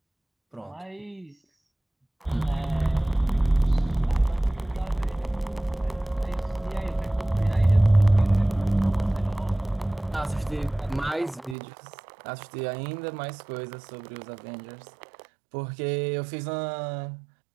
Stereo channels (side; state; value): left; drops out; at 11.6 s